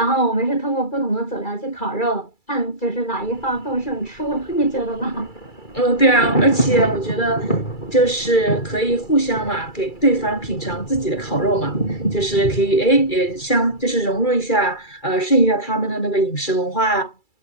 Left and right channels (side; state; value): right; late; 2.3 ms